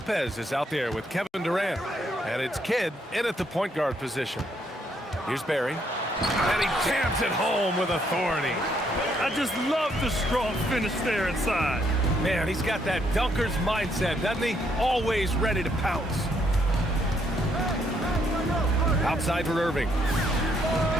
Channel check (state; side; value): normal; both; correlation 0.72